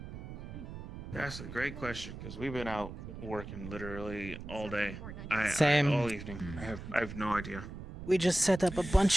That's a great question because we've been out working literally all day. Same. All evening. I have no idea. We just set up a bunch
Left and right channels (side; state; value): right; noise; rumble, 10 dB below the sound